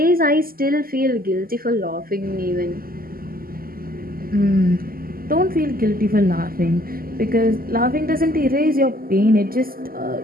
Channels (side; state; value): left; late; 0.42 ms